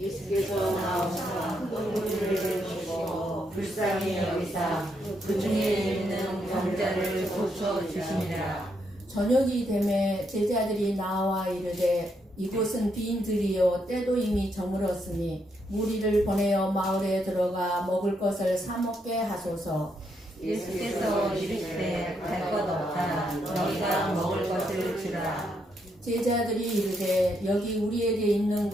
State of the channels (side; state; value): both; normal; correlation 0.78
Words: 나오사 큰 무리를 보시고 불쌍히 여기사 그 중에 있는 병자를 고쳐 주시니라. 저녁이 되매 제자들이 나와 이르되 이곳은 빈 들이요 때도 이미 저물었으니 무리를 보내어 마을에 들어가 먹을 것을 사 먹게 하소서. 예수께서 이르시되 갈 것 없다. 너희가 먹을 것을 주라. 제자들이 이르되 여기 우리에게 있는